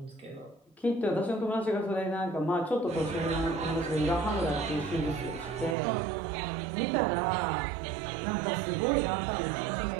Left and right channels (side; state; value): left; drops out; at 5.8 s